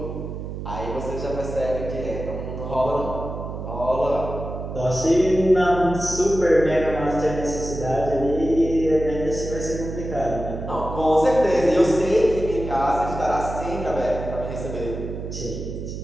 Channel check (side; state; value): right; noise; hum, 7 dB below the sound